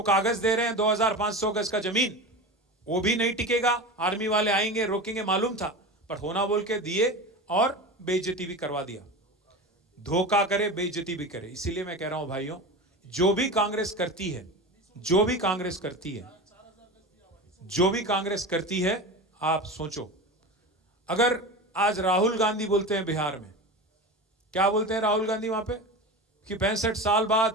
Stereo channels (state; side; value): normal; both; correlation 0.28